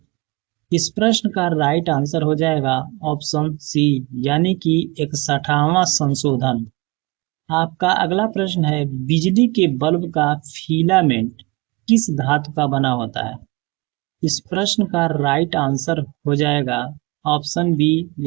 इस प्रश्न का राइट आंसर हो जाएगा ऑप्शन सी यानी कि 61वां संशोधन। आपका अगला प्रश्न है, बिजली के बल्ब का फिलामेंट किस धातु का बना होता है? इस प्रश्न का राइट आंसर हो जाएगा ऑप्शन बी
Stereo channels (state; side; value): quieter; left; 24.2 dB